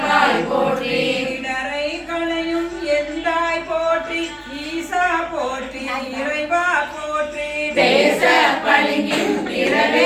போற்றி இடரை களையும் எந்தாய் போற்றி ஈசா போற்றி இறைவா போற்றி பேச பளிங்கின்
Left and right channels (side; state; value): both; identical; correlation 1.00